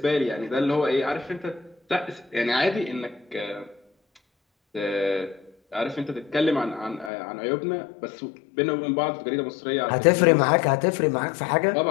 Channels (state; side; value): drops out; right; at 7.1 s